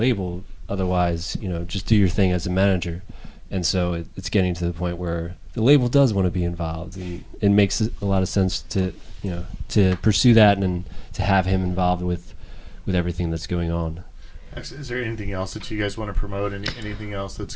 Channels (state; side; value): identical; both; correlation 1.00